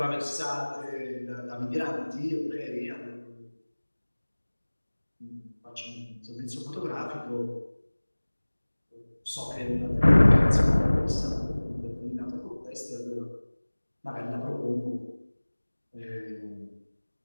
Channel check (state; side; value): inverted; both; correlation -1.00